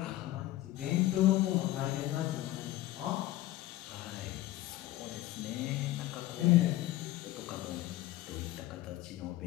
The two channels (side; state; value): right; quieter; 15.8 dB